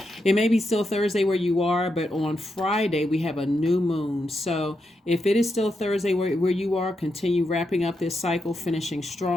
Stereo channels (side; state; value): both; normal; correlation 0.84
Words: It may be still Thursday where you are, but on Friday we have a new moon. So if it is still Thursday where you are, continue wrapping up this cycle, finishing